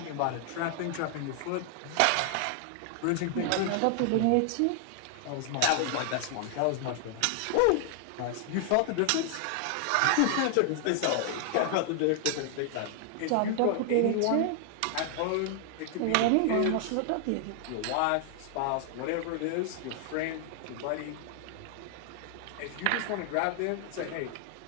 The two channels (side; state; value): both; different; correlation 0.00